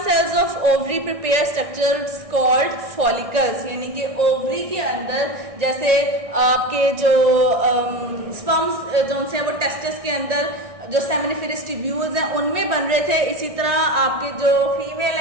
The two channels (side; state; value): left; late; 1.6 ms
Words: cells of ovary prepare structures called follicles, यानी कि ओवरी के अंदर जैसे आपके जो स्पर्म्स जो से वो टेस्टिस के अंदर जो सेमिनिफेरस ट्यूब्यूल्स हैं उनमें बन रहे थे, इसी तरह आपके जो फीमेल